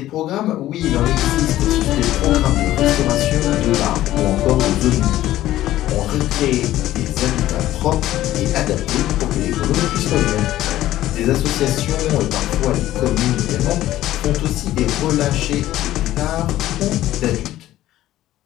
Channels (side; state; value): right; quieter; 14.3 dB